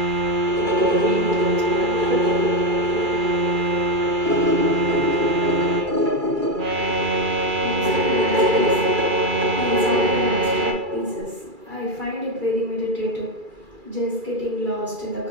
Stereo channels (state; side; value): late; left; 2.4 ms